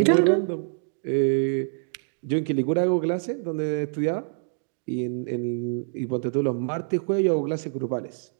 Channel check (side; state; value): left; silent; digital silence